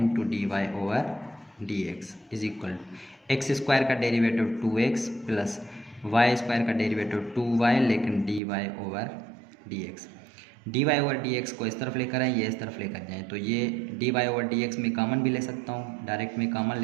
dy/dx is equal to X square का derivative 2x plus Y square का डेरिवेटिव 2y, लेकिन dy/dx। dy/dx को इस तरफ लेकर आए, ये इस तरफ लेकर जाएँ, तो ये dy/dx में कॉमन भी ले सकता हूँ, डायरेक्ट में कॉमन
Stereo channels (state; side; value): drops out; left; at 8.4 s